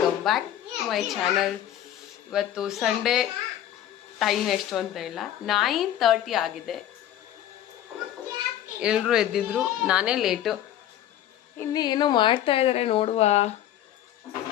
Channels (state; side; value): quieter; right; 11.8 dB